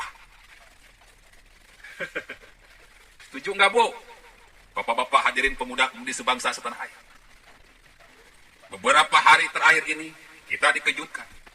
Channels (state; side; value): identical; both; correlation 1.00